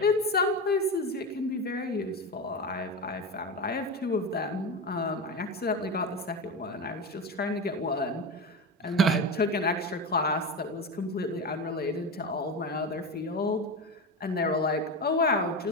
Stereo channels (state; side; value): normal; both; correlation 0.20